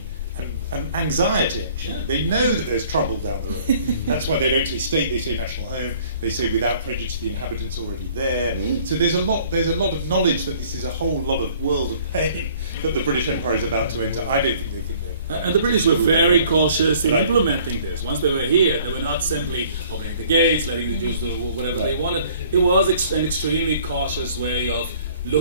and anxiety, actually. Yeah. They know that there's trouble down the road. That's why they don't say state, they say national home. They say without prejudice, the inhabitants already there. So there's a lot of knowledge that this is a whole lot of world of pain that the British Empire is about to enter. I don't think they think they're... And the British were very cautious in implementing this. Once they were here, they were not simply opening the gates, letting the Jews do whatever they wanted. It was an extremely cautious way of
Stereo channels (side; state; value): both; inverted; correlation -0.55